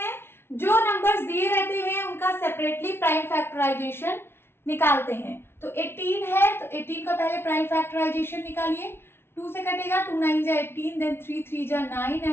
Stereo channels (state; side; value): late; right; 0.12 ms